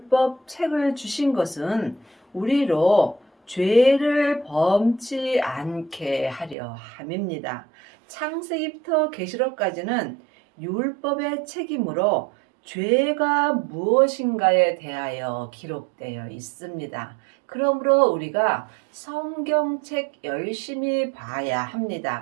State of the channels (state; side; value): drops out; left; at 6.6 s